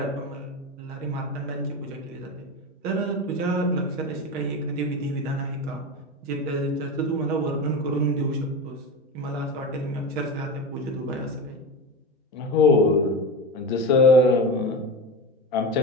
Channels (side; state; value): both; normal; correlation 0.23